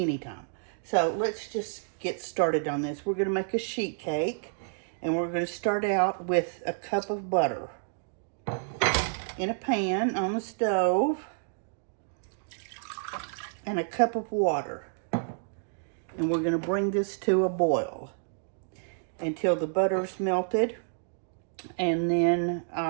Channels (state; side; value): silent; left; digital silence